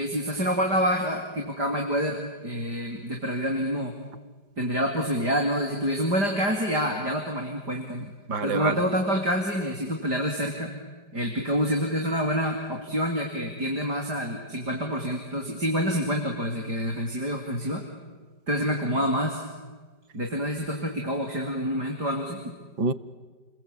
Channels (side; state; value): left; late; 5.0 ms